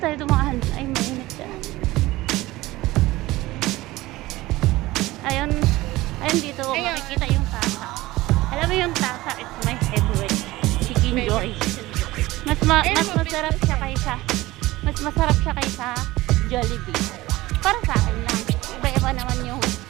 dumaan. Ay, mainit siya. Ayun, ayun dito Ayun. makikita yung tasa. Alam mo yung tasa, it's my favorite. Chicken Joy. Mas masarap siya kaysa Jollibee. Para sa akin lang. Iba-iba naman yung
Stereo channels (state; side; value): quieter; left; 18.5 dB